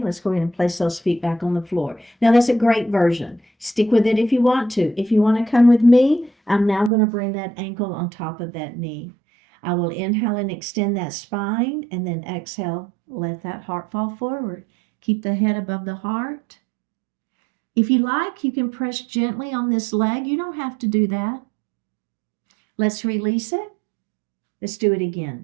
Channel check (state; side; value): drops out; left; at 6.9 s